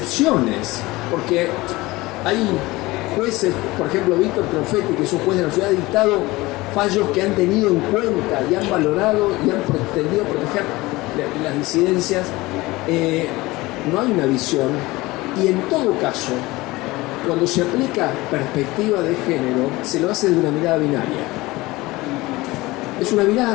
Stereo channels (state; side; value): quieter; right; 20.5 dB